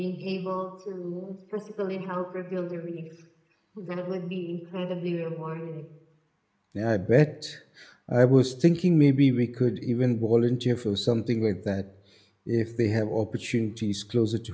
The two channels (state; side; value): identical; both; correlation 1.00